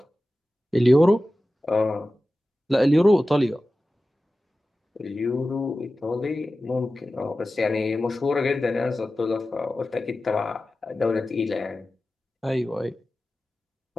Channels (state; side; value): normal; both; correlation 0.95